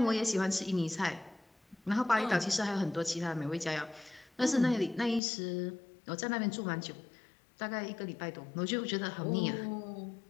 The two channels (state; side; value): drops out; right; at 5.2 s